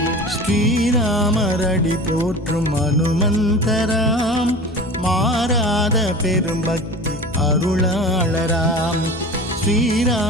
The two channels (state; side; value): noise; left; hum, 18 dB below the sound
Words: ஸ்ரீராமரடி போற்றும் அனுமந்தராம் மாறாத பெரும்பக்தி அருளாளராம்.